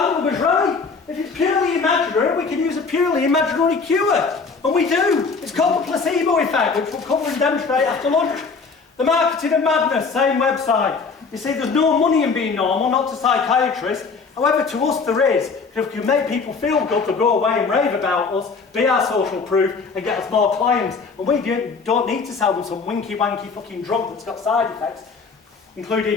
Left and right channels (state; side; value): quieter; right; 4.8 dB